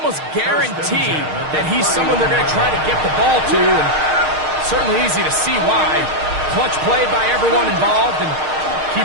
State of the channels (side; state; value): left; late; 6.5 ms